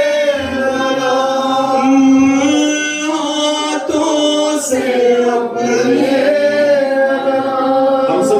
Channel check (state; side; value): identical; both; correlation 1.00